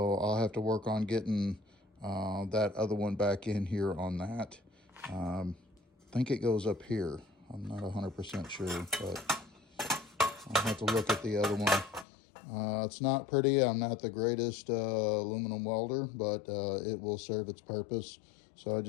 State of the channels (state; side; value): drops out; right; at 12.1 s